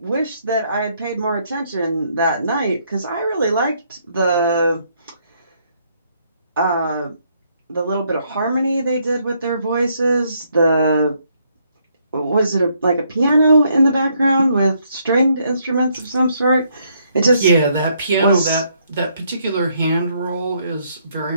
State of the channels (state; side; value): inverted; both; correlation -0.72